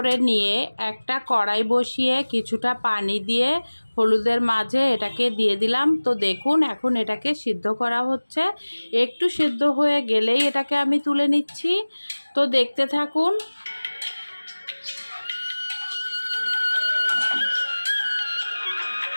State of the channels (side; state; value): both; inverted; correlation -1.00